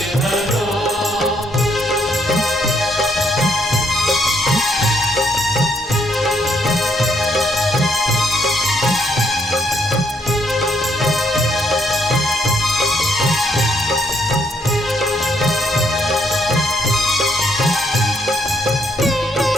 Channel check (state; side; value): normal; both; correlation 0.72